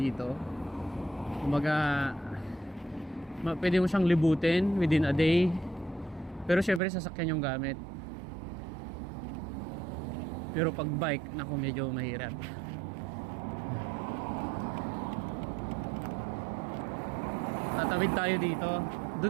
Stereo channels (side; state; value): left; drops out; at 6.8 s